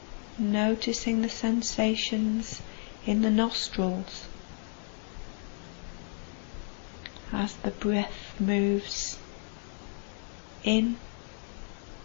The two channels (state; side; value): silent; right; 56 dB below the other